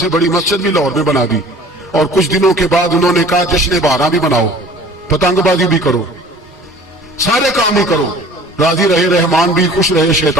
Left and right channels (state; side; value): normal; both; correlation 0.47